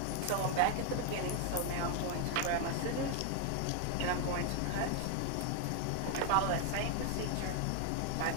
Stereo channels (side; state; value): both; different; correlation 0.00